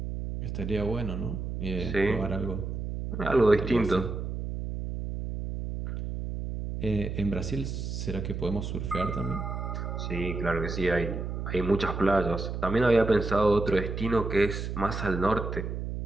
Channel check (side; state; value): right; noise; hum, 5 dB below the sound